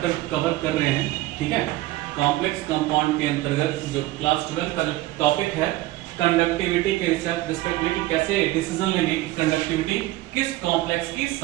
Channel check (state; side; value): quieter; left; 17.3 dB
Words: कवर कर रहे हैं, ठीक है, कॉम्प्लेक्स कंपाउंड के अंतर्गत जो क्लास 12 का जो टॉपिक है कंडक्टिविटी के रिस्पेक्ट में कि कैसे डिसीजन लेंगे कि कंडक्टिविटी किस कॉम्प्लेक्स की